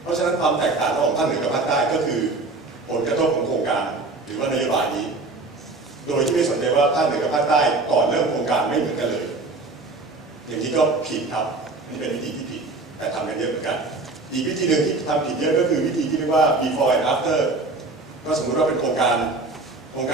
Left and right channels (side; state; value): left; quieter; 3.4 dB